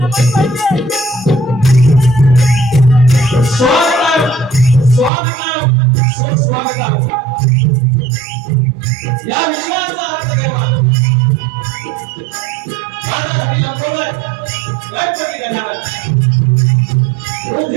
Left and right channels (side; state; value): left; drops out; at 5.1 s